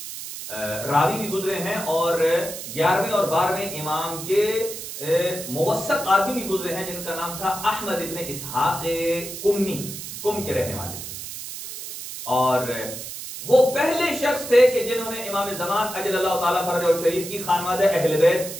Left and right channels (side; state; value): right; noise; hiss, 9 dB below the sound